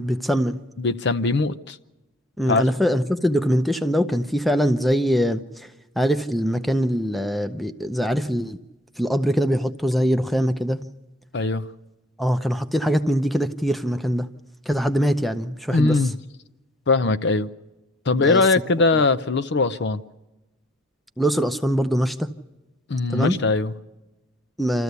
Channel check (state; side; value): normal; both; correlation 0.59